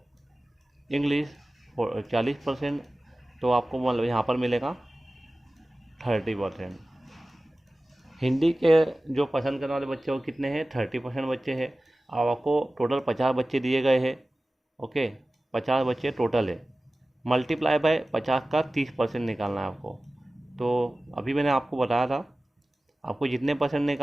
English 40%, तो आपको मतलब यहाँ पर मिलेगा 30%। हिंदी के जो पसंद करने वाले बच्चे वो कितने हैं? 30% बच्चे हैं। अब आपको टोटल 50 बच्चे दिए गए हैं, ओके। 50 बच्चे टोटल है। मल्टीप्लाई बाय 50 का 30% निकालना है आपको। तो अभी मैंने आपको बताया था, आपको जितने परसेंट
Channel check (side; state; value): both; normal; correlation 0.97